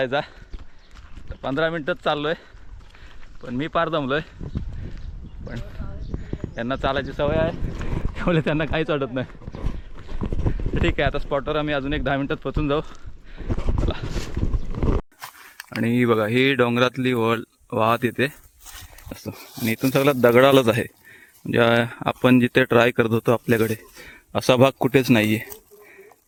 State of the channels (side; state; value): both; identical; correlation 1.00